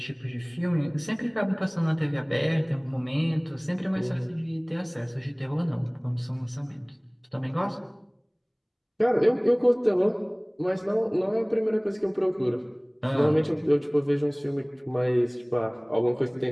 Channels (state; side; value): identical; both; correlation 1.00